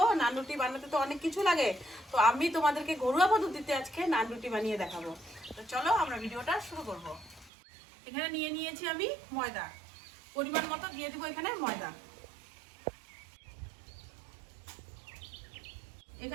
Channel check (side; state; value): left; drops out; at 7.5 s